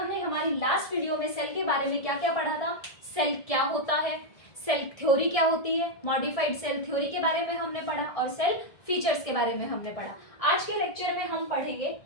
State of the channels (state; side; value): late; right; 1.7 ms